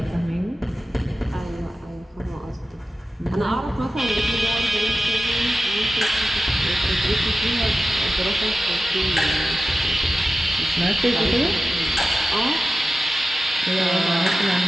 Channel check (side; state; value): both; normal; correlation 0.94